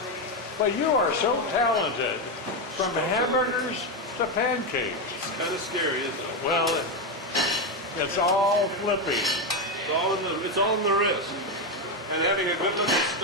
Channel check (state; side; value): normal; both; correlation 0.09